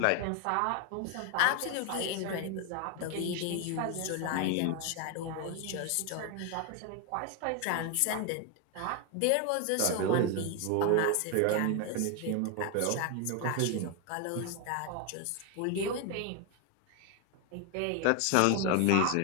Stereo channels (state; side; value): different; both; correlation 0.01